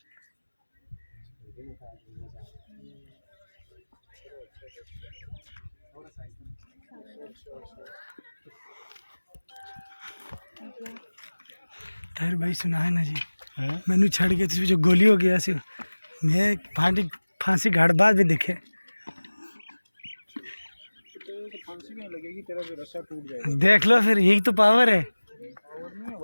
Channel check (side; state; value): both; inverted; correlation -1.00